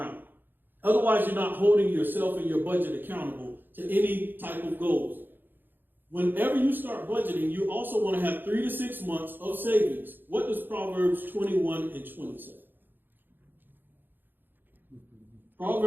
Otherwise, you're not holding yourself and your budget accountable to any type of goals. Whenever you start budgeting, you also want to have 3 to 6 months of savings. What does Proverbs 21 and 20 say?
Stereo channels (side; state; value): left; late; 0.094 ms